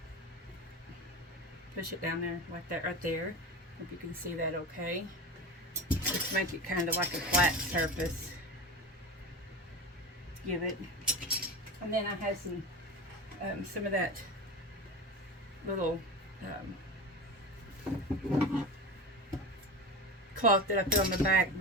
push it down there like that right there. Hope you can see that okay. Just make it kind of like a flat surface. Give it. And then I have some of that little cloth that I put on the back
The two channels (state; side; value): normal; both; correlation 0.28